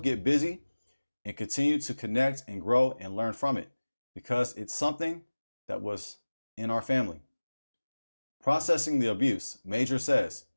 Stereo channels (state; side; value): inverted; both; correlation -1.00